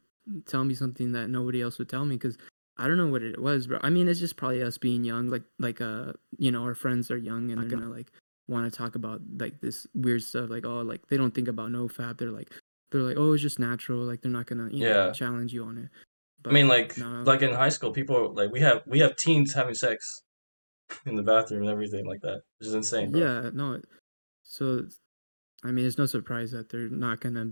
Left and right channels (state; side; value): inverted; both; correlation -1.00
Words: tell me something that nobody else would tell me, because I don't know what it was, bro. I mean, it's just probably us being young, you know, our friends are young and they're gonna like want to talk about like this weird stuff, like oh, like they don't think about no fap. They're like, oh, it's just natural. Like they're not gonna, you know, Yeah. challenge you on it. I mean, But no, like in high school, people like we have teens having sex in the bathroom and everything like that, which is insane, bro. yeah, no. So I mean, it's no surprise that they're not gonna